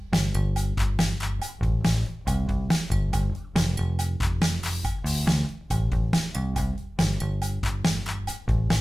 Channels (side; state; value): both; normal; correlation 0.97